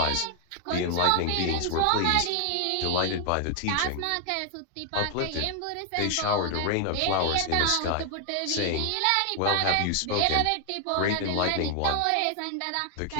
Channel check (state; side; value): different; both; correlation 0.00